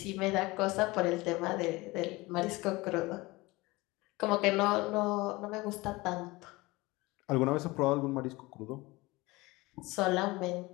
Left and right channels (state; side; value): quieter; right; 21.9 dB